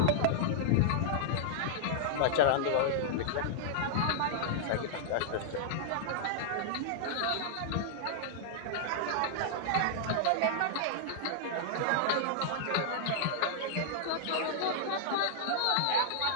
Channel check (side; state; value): both; different; correlation -0.01